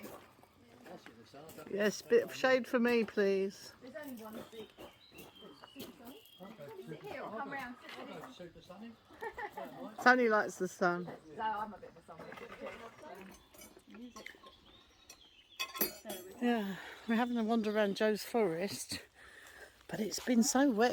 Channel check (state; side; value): identical; both; correlation 1.00